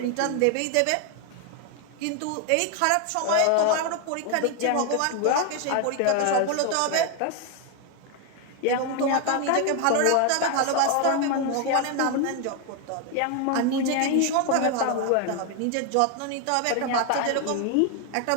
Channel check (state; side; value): different; both; correlation 0.01